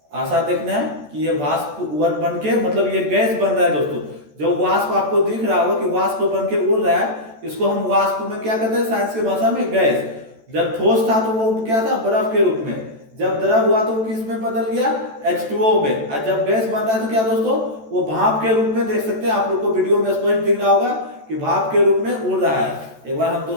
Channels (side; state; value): left; late; 14 ms